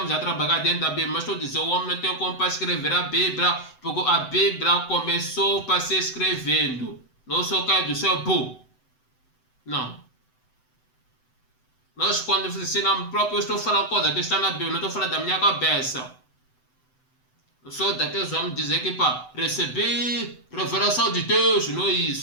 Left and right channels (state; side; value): late; right; 7.9 ms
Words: a trabalhar dentro da Bíblia. Mas estou dizendo, o homem não tem como para escrever a Bíblia, porque a Bíblia começou para ser escrevendo. Não só cai do céu, bum. Não. Nós quando ensinamos próprio, eu estou falando coisa que está na Bíblia, não estou falando da minha cabeça. Eu sou daqueles homens dizer que para receber revelação de Deus, não é